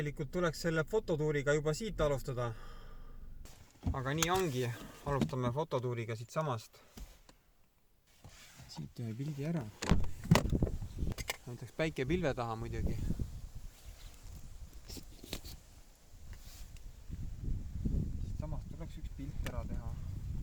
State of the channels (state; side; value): identical; both; correlation 1.00